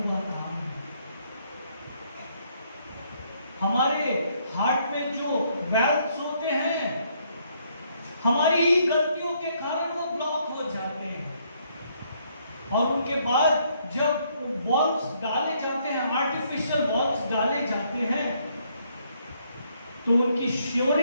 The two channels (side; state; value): both; inverted; correlation -0.70